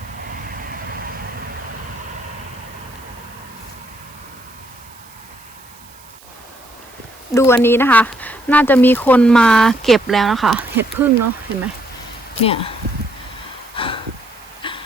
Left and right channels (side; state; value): right; noise; hiss, 24 dB below the sound